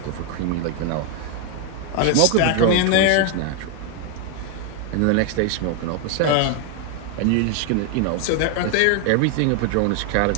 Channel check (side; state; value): both; different; correlation 0.00